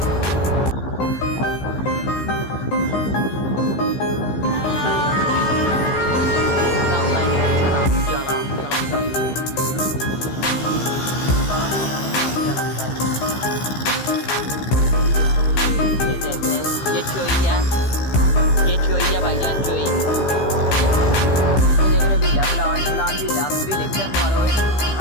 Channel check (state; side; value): late; right; 15 ms